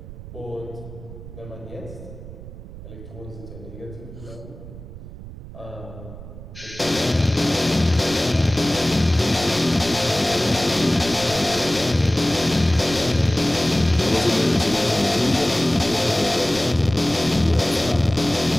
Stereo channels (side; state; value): right; noise; rumble, 14 dB below the sound